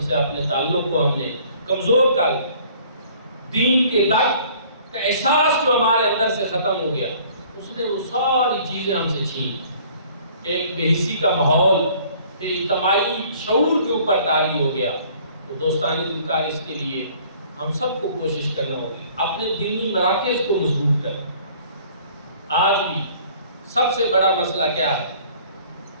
سے اپنے تعلق کو ہم نے کمزور کر دیا، دین کے تک کا احساس جو ہمارے اندر سے ختم ہو گیا، اس نے وہ ساری چیزیں ہم سے چھین. ایک بے حسی کا ماحول اجتماعی شعور کے اوپر طاری ہو گیا. تو دوستانی دلکار اس کے لیے ہم سب کو کوشش کرنا ہوگی اپنے دینی مراکز کو مضبوط کریں. آج بھی سب سے بڑا مسئلہ کیا ہے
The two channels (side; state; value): both; inverted; correlation -0.55